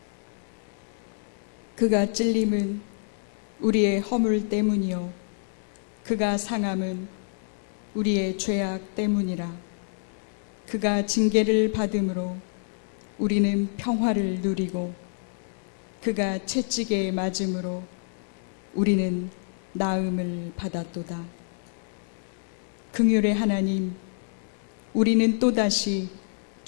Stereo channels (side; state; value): right; silent; digital silence